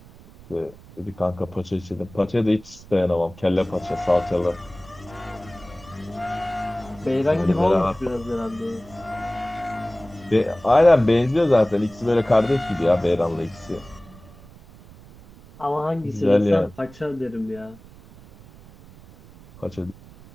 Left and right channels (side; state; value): right; noise; rumble, 21 dB below the sound